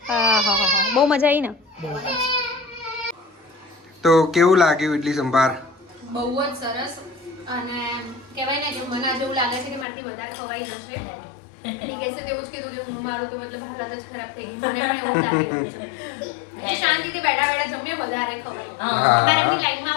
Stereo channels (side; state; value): right; drops out; at 9.9 s